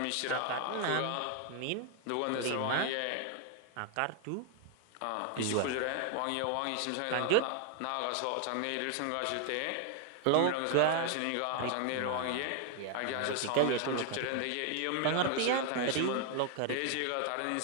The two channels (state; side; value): different; both; correlation 0.00